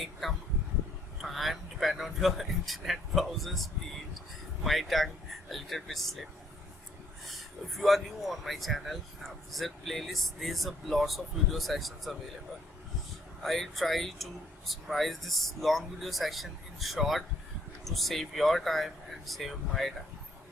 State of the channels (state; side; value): normal; both; correlation 0.66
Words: some time depend on your internet browser speed. My tongue a little bit slip. If you are new on my channel, visit playlist. There is lots of video sessions available. I try to summarize this long video section in short to save your time and save my time.